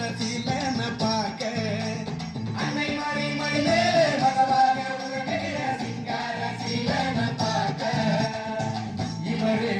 சீலன பார்க்க, அன்னை மாறி மடி மேலே மகவாக உறங்குகிற சிங்கார சீலன பார்க்க, இவரே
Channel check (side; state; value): both; identical; correlation 1.00